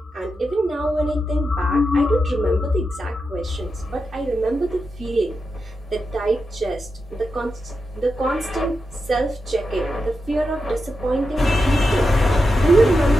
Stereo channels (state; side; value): normal; both; correlation 0.88